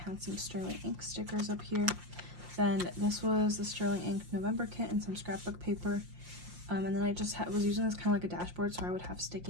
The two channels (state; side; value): late; left; 5.7 ms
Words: some sterling ink stickers up here. Then this was the sterling ink November kit and some scrapbook paper, and then I just was using this kind of like a dashboard, so I would have